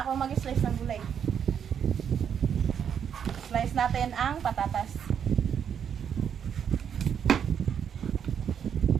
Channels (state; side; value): quieter; left; 8.1 dB